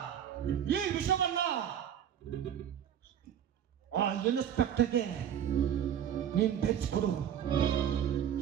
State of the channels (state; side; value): quieter; left; 9.5 dB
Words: ಆ ಇನ್ಸ್ಪೆಕ್ಟರ್ಗೆ ನೀನ್ ಬೆಚ್ಚಿಕೊಡು.